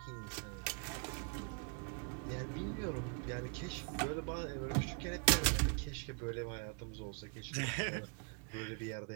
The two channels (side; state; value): left; quieter; 38.1 dB